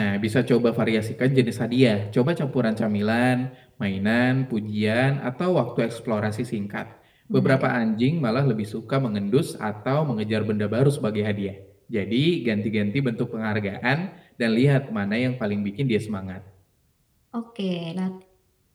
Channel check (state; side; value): identical; both; correlation 1.00